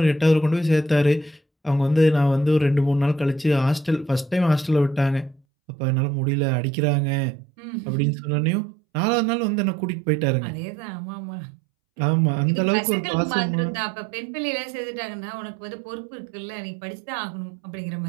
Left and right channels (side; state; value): left; drops out; at 5.4 s